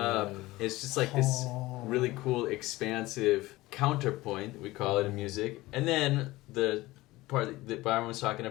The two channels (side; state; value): right; quieter; 19.0 dB